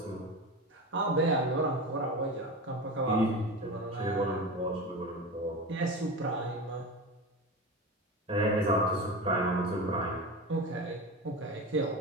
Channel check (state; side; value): normal; both; correlation 0.25